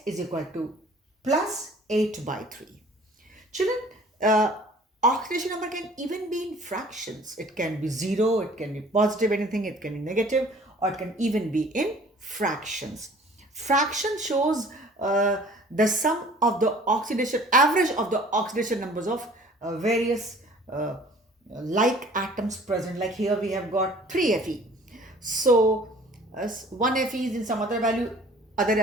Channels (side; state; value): both; normal; correlation 0.51